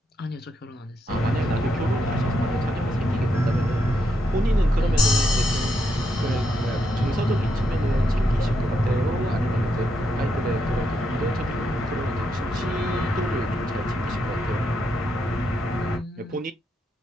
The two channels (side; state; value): both; normal; correlation 0.80